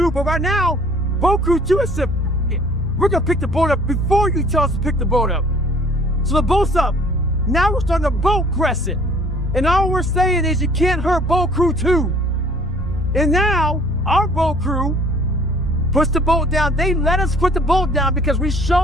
but right now, Boat Crew 2 has said, we're gonna pick the boat up before you tell us to pick the boat up. So the boat's up. Now we're starting to boat crescent. And all we're saying is you can't hurt Boat Crew 2. And now our boat crew puts the boat down. They let us put the boat down because we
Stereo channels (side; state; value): both; normal; correlation 0.54